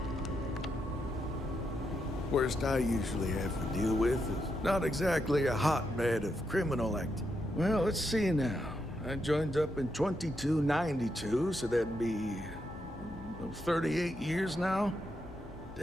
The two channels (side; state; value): both; normal; correlation 0.82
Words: Worst I usually have to deal with is not exactly a hotbed of criminal activity. Well, let's see now. I joined up in 2292, so that'd be 38 years now?